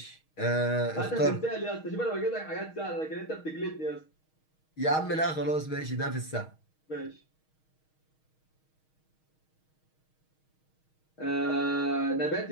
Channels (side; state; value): right; late; 6.4 ms